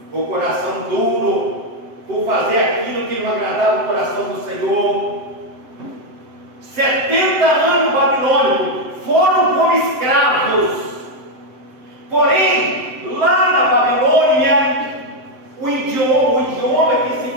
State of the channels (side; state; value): left; late; 7.8 ms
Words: por coração duro, por fazer aquilo que não agradava o coração do Senhor. 70 anos babilônicos, foram como escravos. Porém, lá na Babilônia, o idioma que se